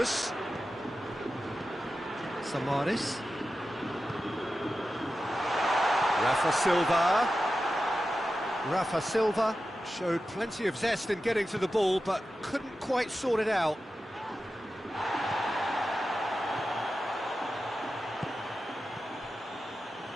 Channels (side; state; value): both; normal; correlation 0.92